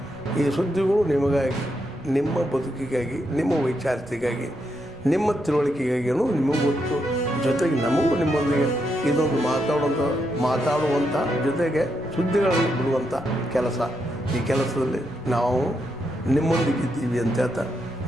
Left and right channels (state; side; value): noise; right; rumble, 23 dB below the sound